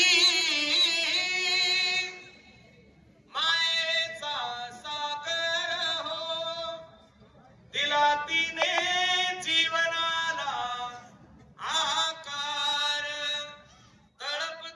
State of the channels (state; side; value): identical; both; correlation 1.00